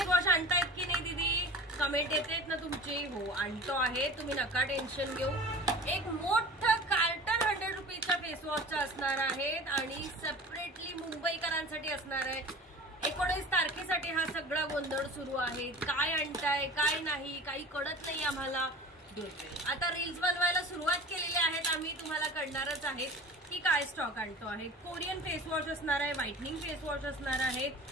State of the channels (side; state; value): both; normal; correlation 0.38